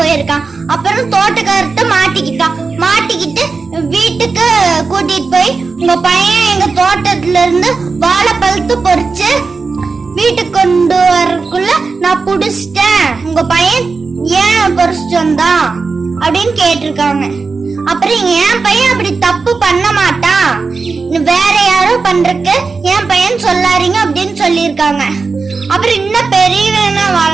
அப்புறம் தோட்டக்காரர்கிட்ட மாட்டிக்கிட்டு வீட்டுக்கு கூட்டிட்டு போய் உங்க பையன் எங்க தோட்டத்துல இருந்து வாழைப்பழத்தை பொறிச்சு வீட்டுக்கு கொண்டு வரக்குள்ள நான் புடிச்சிட்டேன், உங்க பையன் ஏன் பொறிச்சிட்டு வந்தான் அப்படின்னு கேட்டிருக்காங்க. அப்புறம் என் பையன் அப்படி தப்பு பண்ண மாட்டான், வேற யாரோ பண்றதுக்கு என் பையன் சொல்லாதீங்க அப்படின்னு சொல்லியிருக்காங்க. அப்புறம் இன்னும் பெரியவனா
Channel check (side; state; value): left; quieter; 4.4 dB